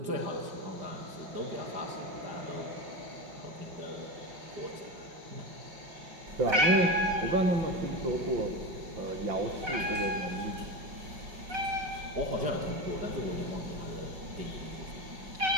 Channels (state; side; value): late; left; 5.3 ms